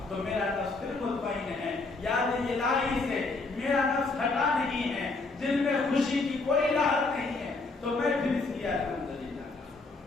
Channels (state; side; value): quieter; right; 3.6 dB